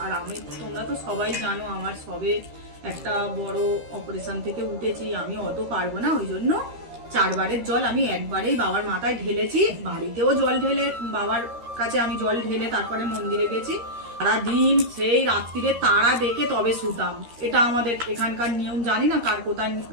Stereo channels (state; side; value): late; left; 13 ms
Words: আর আমি, তোমরা তো সবাই জানো আমার সবে একটা বড় অপারেশন থেকে উঠেছি, আমি অত পারবো না, ওই জন্য 4 বারের জল আমি একবারেই বাবার মাথায় ঢেলেছি। বাড়িতেও জল ঢেলে, বাবার কাছে আমি জল ঢেলে তারপরে মন্দিরে গেছি। সারাদিন সেই রাত্রিরে তারা দেখে তবে শুতাম, এটা আমাদের এখানকার নিয়ম, জানি না কার কোথায়